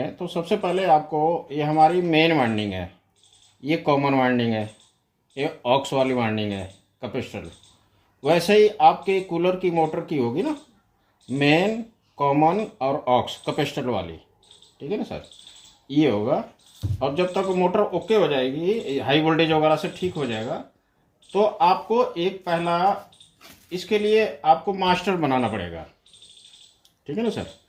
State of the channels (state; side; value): identical; both; correlation 1.00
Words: तो सबसे पहले आपको, ये हमारी मेन वाइंडिंग है, ये कॉमन वाइंडिंग है, ये ऑक्स वाली वाइंडिंग है कैपेसिटर। वैसे ही आपके कूलर की मोटर की होगी ना, मेन, कॉमन और ऑक्स कैपेसिटर वाली। ठीक है ना सर, ये होगा। अब जब तक मोटर ओके हो जाएगी, हाई वोल्टेज वगैरह से ठीक हो जाएगा, तो आपको एक पहला इसके लिए आपको मास्टर बनाना पड़ेगा। ठीक है ना सर।